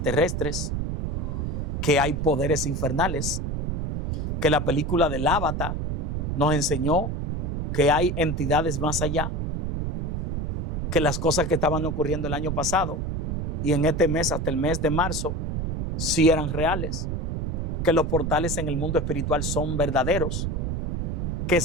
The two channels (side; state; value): right; noise; rumble, 1 dB below the sound